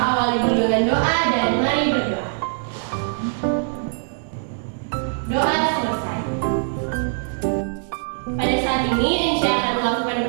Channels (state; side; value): silent; left; digital silence